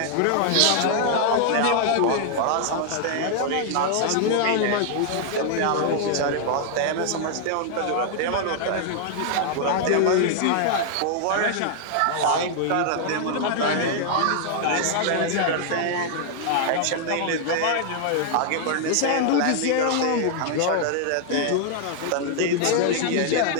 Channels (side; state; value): both; different; correlation 0.00